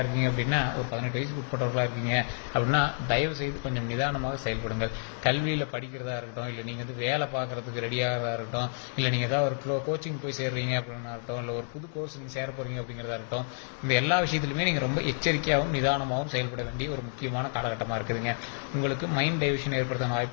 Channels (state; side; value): silent; right; digital silence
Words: இருக்கீங்க அப்படின்னா, ஒரு 18 வயசுக்கு உட்பட்டவர்களாக இருக்கீங்க அப்படின்னா தயவு செய்து கொஞ்சம் நிதானமாக செயல்படுங்கள். கல்வியில் படிக்கிறதா இருக்கட்டும், இல்லை நீங்கள் வேலை பார்க்குறதுக்கு ரெடியாகிறதா இருக்கட்டும், இல்லை நீங்கள் ஏதாவது ஒரு கோச்சிங் போய் சேர்றீங்க அப்படின்னா இருக்கட்டும், இல்லை ஒரு புது கோர்ஸ் நீங்கள் சேர போகிறீங்க அப்படிங்கிறதா இருக்கட்டும், இந்த எல்லா விஷயத்துலையுமே நீங்கள் ரொம்ப எச்சரிக்கையாகவும் நிதானமாகவும் செயல்பட வேண்டிய ஒரு முக்கியமான காலகட்டமாக இருக்குதுங்க. உங்களுக்கு மைண்ட் டைவர்ஷன் ஏற்படுத்தான